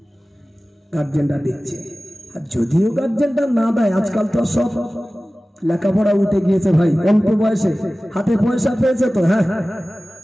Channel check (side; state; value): both; normal; correlation 0.97